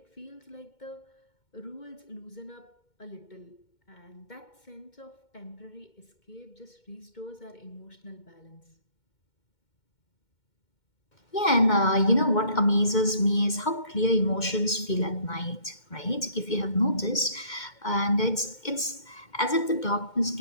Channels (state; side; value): late; right; 2.2 ms